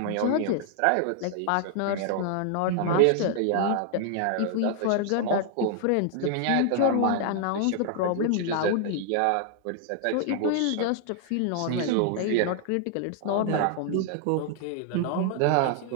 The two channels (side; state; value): both; different; correlation 0.00